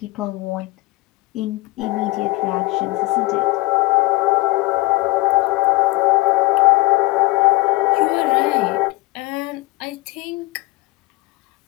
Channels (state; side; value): quieter; right; 22.3 dB